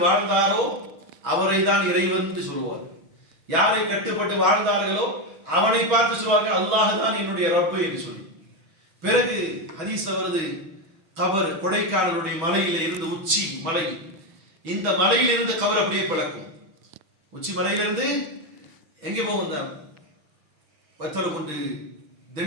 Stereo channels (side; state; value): left; late; 6.1 ms